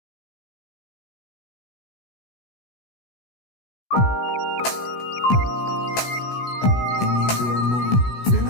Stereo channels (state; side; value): late; right; 16 ms